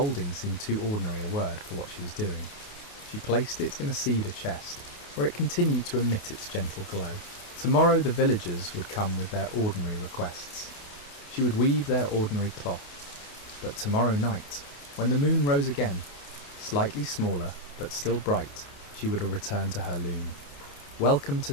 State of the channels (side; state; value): right; late; 28 ms